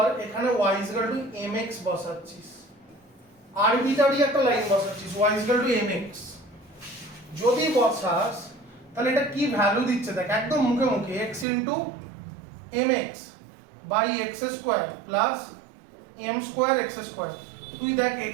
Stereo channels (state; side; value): drops out; left; at 11.5 s